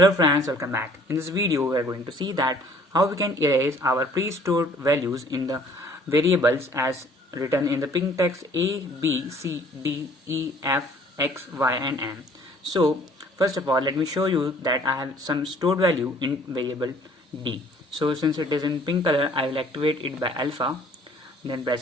friends, welcome back. In this video we are going to see that how we can erase our pre-stored values in the variables as written in the pink text a, b, c, d, e, f, x, y and m. So first of all let me show you that I have some stored value in variable d. So since it is in pink color, I will activate it by alpha, then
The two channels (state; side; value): normal; both; correlation 0.56